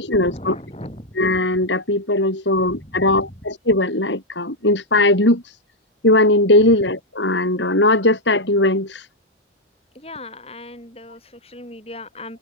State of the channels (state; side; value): normal; both; correlation -0.01